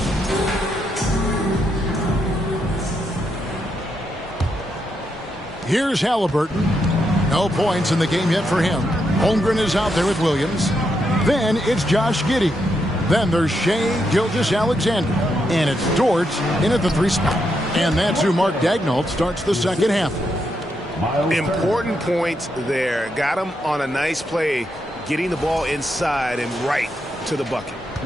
Here's Halliburton. No points in the game yet for him. Holmgren is out there with Williams. Then it's Josh Giddey. Then there's Shai Gilgeous-Alexander. And it's Dort in at the 3 spot. And that's who Mark Daigneault starts the second half. Important points there. Got him on a nice play, getting the ball inside and right to the bucket.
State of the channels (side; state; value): both; normal; correlation 0.81